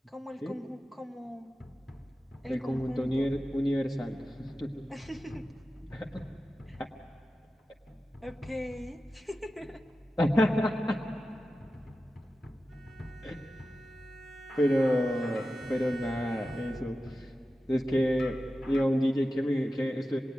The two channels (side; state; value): both; normal; correlation 0.93